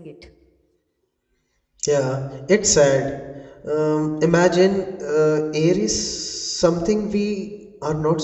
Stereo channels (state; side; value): identical; both; correlation 1.00